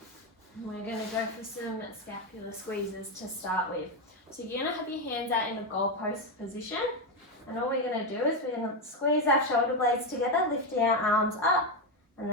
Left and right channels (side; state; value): both; normal; correlation 0.08